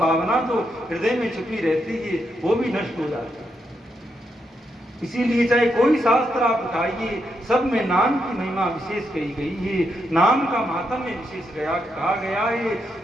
जो हृदय में छुपी रहती है वो भी नष्ट हो जाती है। इसीलिए चाहे कोई शास्त्र आप उठाइए, सब में नाम की महिमा विशेष कही गई है, नाम का महात्म्य विशेष कहा गया है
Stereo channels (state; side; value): normal; both; correlation 0.81